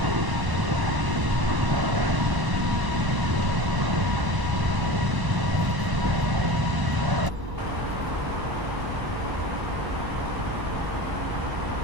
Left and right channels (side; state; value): left; late; 1.0 ms